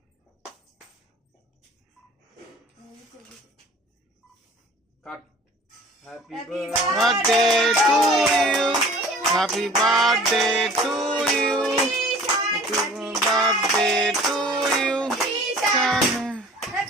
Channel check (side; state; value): both; normal; correlation 0.47